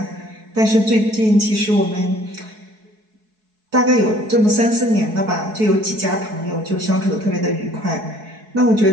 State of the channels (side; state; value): left; late; 4.7 ms